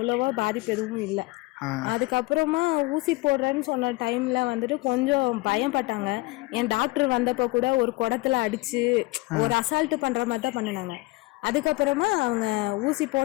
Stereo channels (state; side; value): quieter; right; 22.5 dB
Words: பாதிப்பு எதுவும் இல்லை. அதுக்கப்புறமா ஊசி போடுறேன்னு சொன்ன டைம்ல வந்துட்டு கொஞ்சம் பயப்பட்டாங்க. என் டாக்டர் வந்தப்போ கூட ஒரு குடத்துல அடிச்சு ஒரு அசால்ட்டு பண்ற மாதிரி தான் பண்ணினாங்க. அதுக்கப்புறமா அவங்க ஊசி